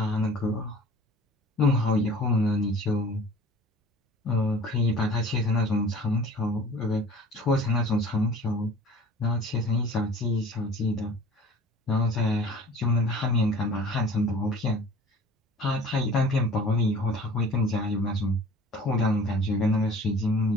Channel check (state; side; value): normal; both; correlation 0.46